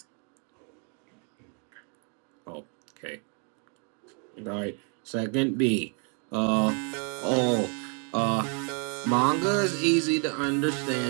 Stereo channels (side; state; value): left; quieter; 39.6 dB